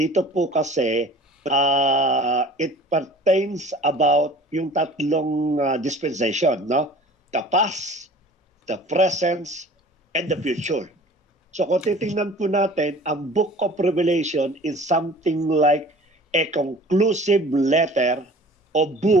po kasi it pertains about yung 3 dispensation, the past, the present, and the future. So kung titingnan po natin, ang Book of Revelation is something like a conclusive letter or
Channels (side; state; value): both; normal; correlation 0.45